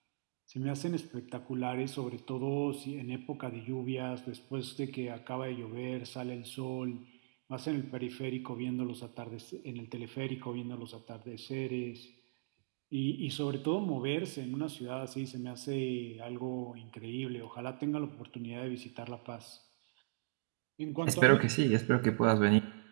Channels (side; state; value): left; silent; digital silence